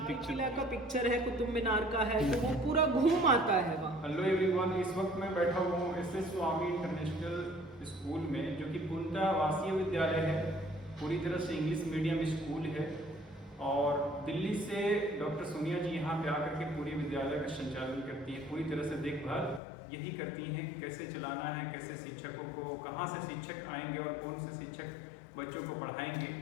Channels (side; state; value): right; drops out; at 19.6 s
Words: किला का पिक्चर है, कुतुब मीनार का है, तो वो पूरा घूम आता है वहाँ। हेलो एवरीवन, इस वक्त मैं बैठा हुआ हूँ एस.एस. स्वामी इंटरनेशनल स्कूल में, जो कि पूर्णतः आवासीय विद्यालय है, पूरी तरह से इंग्लिश मीडियम स्कूल है। और दिल्ली से डॉक्टर सोनिया जी यहाँ पे आकर के पूरी विद्यालय का संचालन करती है, पूरी तरह से देखभाल यही करती हैं कि कैसे चलाना है, कैसे शिक्षकों को, कहाँ से शिक्षक आएंगे और कौन से शिक्षक बच्चों को पढ़ाएंगे।